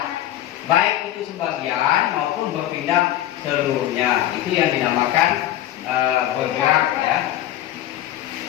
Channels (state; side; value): quieter; right; 13.1 dB